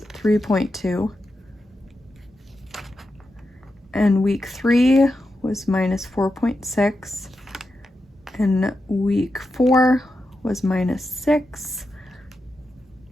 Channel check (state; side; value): normal; both; correlation 0.88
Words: 3.2. And week 3 was minus 4.6. And week 4 was minus 6.